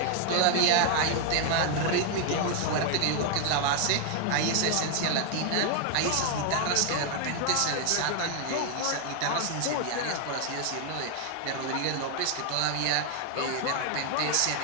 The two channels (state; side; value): different; both; correlation 0.00